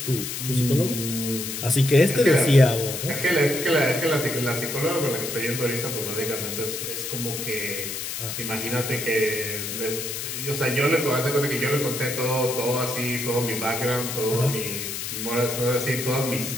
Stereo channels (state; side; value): noise; left; hiss, 5 dB below the sound